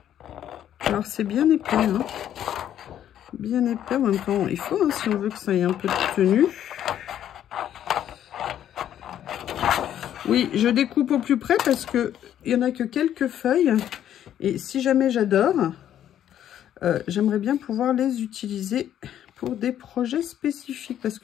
Alors, c'est bien épais, hein. Bien épais, en même temps, il faut, hein, si on veut que ça ait un peu de tenue. Oui, je découpe au plus près parce que il n'y en a que quelques feuilles. Et si jamais j'adore, j'aimerais bien pouvoir les utiliser pour des projets spécifiques. Parce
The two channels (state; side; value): quieter; right; 10.7 dB